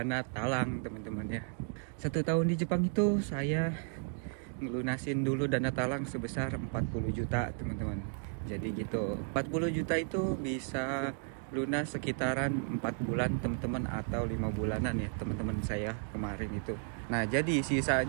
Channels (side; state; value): left; silent; 55 dB below the other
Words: talang teman-teman ya. 1 tahun di Jepang itu saya ngelunasin dulu dana talang sebesar 40 juta teman-teman. Jadi gitu, 40 juta itu bisa lunas sekitaran 4 bulan teman-teman, atau 5 bulanan ya teman-teman saya kemarin itu. Nah jadi